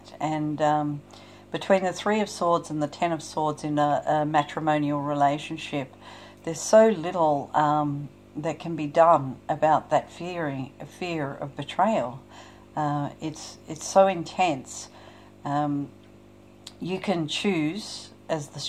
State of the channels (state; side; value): identical; both; correlation 1.00